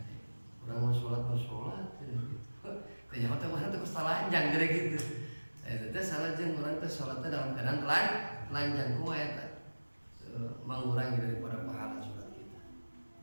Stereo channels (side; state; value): both; inverted; correlation -1.00